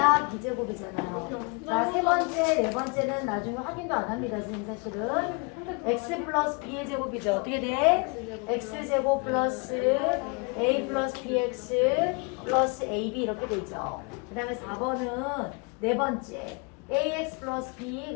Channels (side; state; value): right; quieter; 32.5 dB